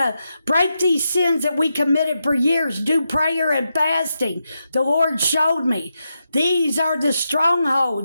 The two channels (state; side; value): inverted; both; correlation -0.86